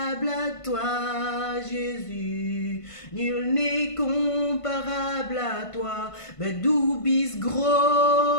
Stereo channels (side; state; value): right; late; 1.5 ms